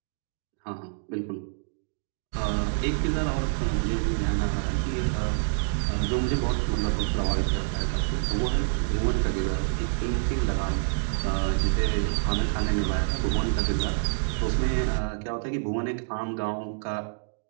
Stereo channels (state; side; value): silent; left; digital silence